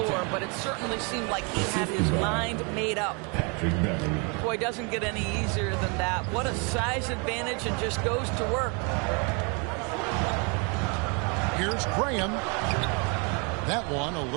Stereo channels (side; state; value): left; quieter; 33.6 dB